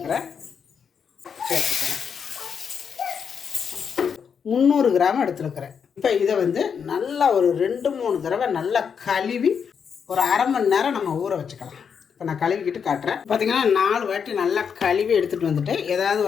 சேர்த்துக்கிறேன். 300 கிராம் எடுத்துருக்கிறேன். இப்போ இதை வந்து நல்லா ஒரு 2-3 தடவை நல்லா கழுவி ஒரு அரை மணி நேரம் நம்ம ஊற வச்சுக்கலாம். இப்போ நான் கழுவிக்கிட்டு காட்டுறேன். பார்த்திங்கன்னா 4 வாட்டி நல்லா கழுவி எடுத்துகிட்டு வந்துட்டு, ஏதாவது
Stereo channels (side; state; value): right; quieter; 6.8 dB